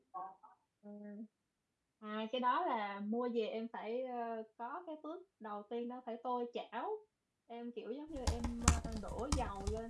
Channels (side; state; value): both; identical; correlation 1.00